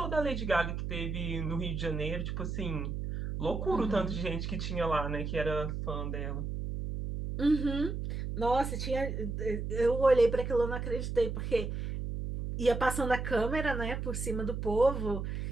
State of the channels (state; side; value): noise; right; hum, 4 dB below the sound